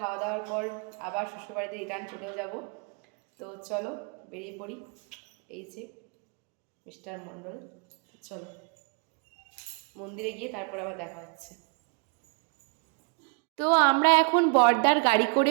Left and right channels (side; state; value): left; quieter; 36.6 dB